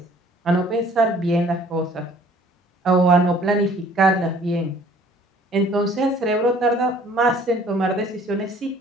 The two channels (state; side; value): normal; both; correlation 0.55